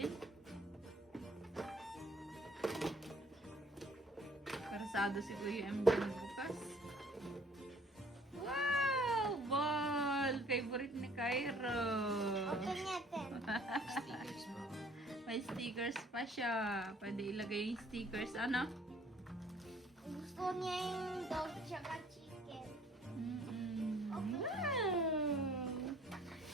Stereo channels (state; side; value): normal; both; correlation 0.58